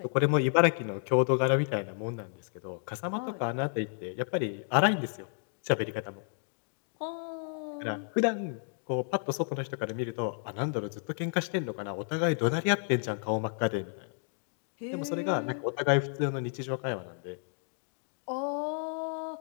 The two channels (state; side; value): silent; right; 57 dB below the other